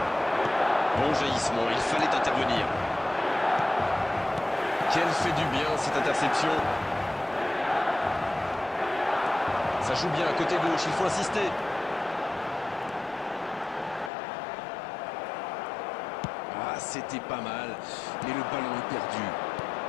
Bon jaillissement, il fallait intervenir. Quelle fait du bien cette interception. Ça joue bien à côté gauche, il faut insister. Ah, c'était pas mal, mais le ballon est perdu.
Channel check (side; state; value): right; drops out; at 14.1 s